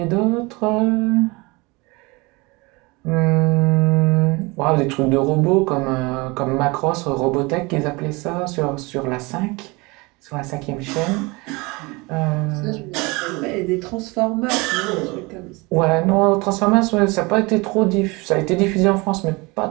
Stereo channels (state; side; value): quieter; left; 25.4 dB